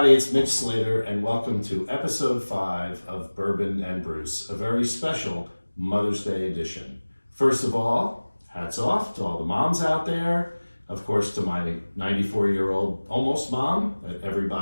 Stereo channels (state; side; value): inverted; both; correlation -1.00